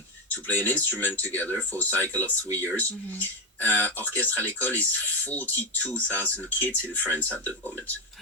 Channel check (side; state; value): both; normal; correlation 0.09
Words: to play an instrument together for a cycle of 3 years. Orchestre à l'école is 42,000 kids in France at the moment.